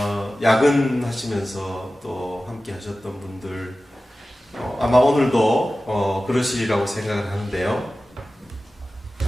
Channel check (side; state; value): both; normal; correlation 0.95